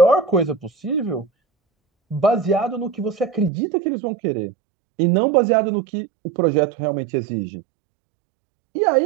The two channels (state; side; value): drops out; left; at 3.5 s